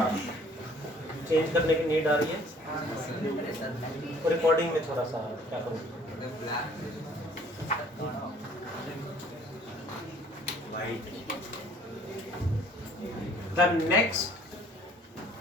चेंज करने की नीड आ रही है, तो रिकॉर्डिंग में थोड़ा सा क्या करूँ। The next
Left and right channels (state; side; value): normal; both; correlation 0.56